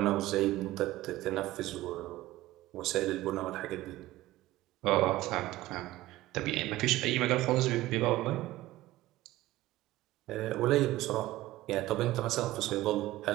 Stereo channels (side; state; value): left; quieter; 16.8 dB